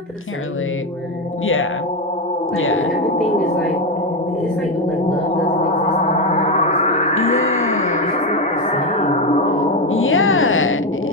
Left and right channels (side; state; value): both; normal; correlation 0.11